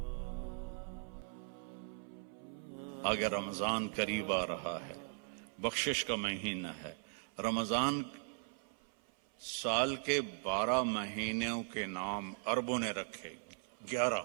آگے رمضان قریب آ رہا ہے، بخشش کا مہینہ ہے. رمضان سال کے 12 مہینوں کے نام عربوں نے رکھے 11،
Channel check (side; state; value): left; silent; 52 dB below the other